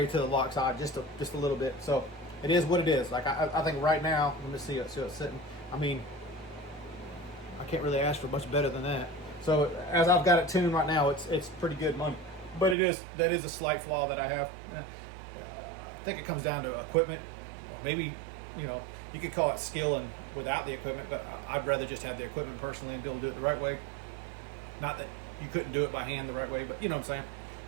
to the lock side just a little bit. So it is what it is. Like I think right now, let me see it. So it's sitting. I mean, I can't really ask for much better than that. So as I've got it tuned right now, it's pretty good money. But that is a slight flaw that I have. I think it comes down to equipment, or maybe, you know, you could call it skill and without the equipment. But I'd rather just have the equipment personally and be able to do it the right way. Not that you couldn't do it by hand the right way, but you know what I'm saying.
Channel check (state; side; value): drops out; left; at 12.8 s